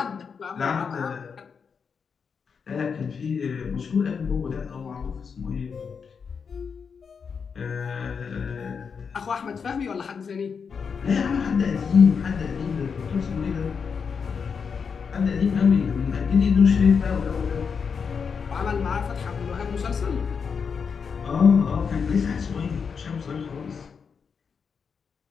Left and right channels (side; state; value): right; quieter; 6.1 dB